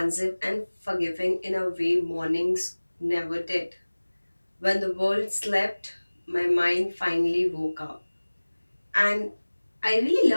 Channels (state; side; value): inverted; both; correlation -1.00